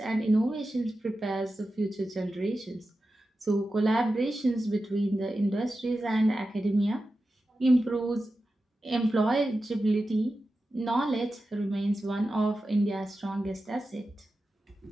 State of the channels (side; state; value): both; normal; correlation 0.92